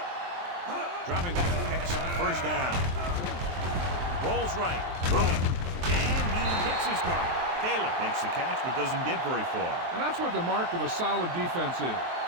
Dropping back to pass on first down. Rolls right. Rolling. And he hits his target. Taylor makes the catch but doesn't get very far. And that's what the mark of a solid defense is.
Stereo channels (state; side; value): late; left; 23 ms